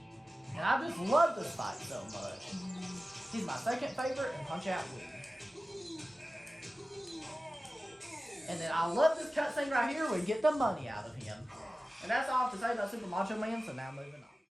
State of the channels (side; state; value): both; normal; correlation 0.96